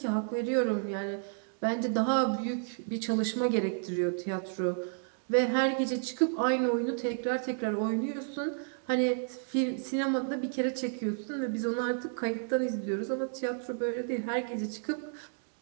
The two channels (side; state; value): left; silent; digital silence